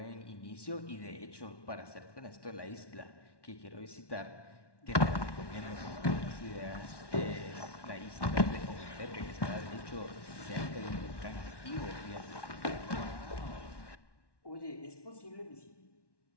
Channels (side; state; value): right; late; 1.1 ms